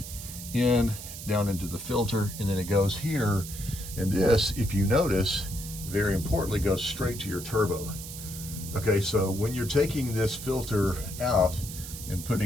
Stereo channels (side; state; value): right; noise; hiss, 11 dB below the sound